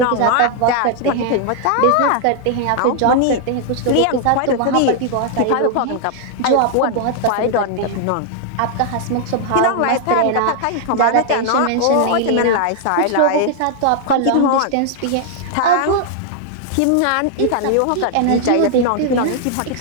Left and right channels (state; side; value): different; both; correlation 0.00